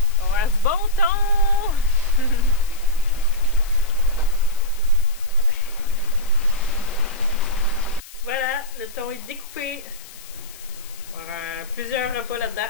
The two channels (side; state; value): left; noise; hiss, 18 dB below the sound